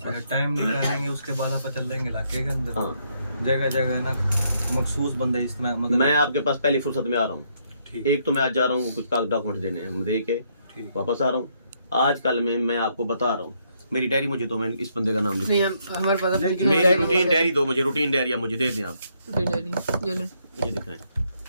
अगर टाइम निकालेंगे उसके बाद आप चल देंगे इलाके के अंदर जगह जगह ना मखसूस बंदे इस तरह मतलब मैं आपके पास पहली फुर्सत में आ रहा हूँ एक तो मैं आज जा रहा हूँ कुछ डॉक्यूमेंट देने हैं दे के वापस आ रहा हूँ आजकल में मैं आपको बता रहा हूँ, मेरी डायरी मुझे दो, मैं इस बंदे का नाम लिख, नहीं हमारे पास अपनी मेरी रूटीन डायरी दो मुझे, रूटीन डायरी आप मुझे दे दें आप, डायरी ये ले मुझे दिखाएं।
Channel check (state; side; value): inverted; both; correlation -0.73